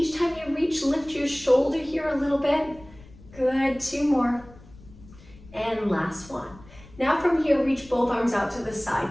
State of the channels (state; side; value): noise; left; rumble, 22 dB below the sound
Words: time you reach, lift your shoulder here a little bit. Good, 2 more. And last one. Now from here, reach both arms out to the side,